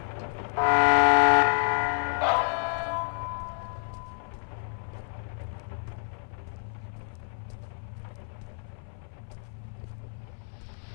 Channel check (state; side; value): silent; right; 57 dB below the other